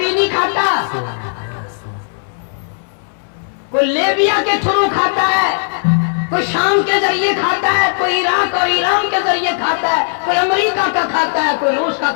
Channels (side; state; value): right; silent; 66 dB below the other